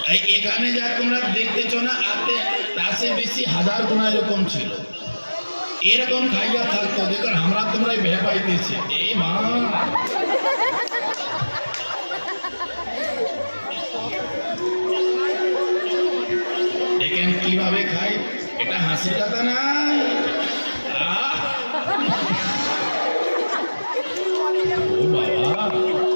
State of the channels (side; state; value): both; inverted; correlation -1.00